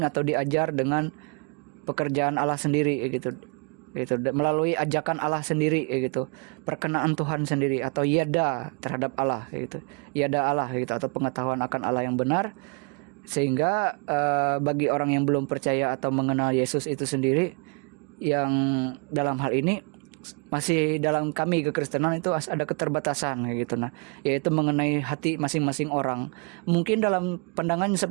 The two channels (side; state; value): left; quieter; 36.0 dB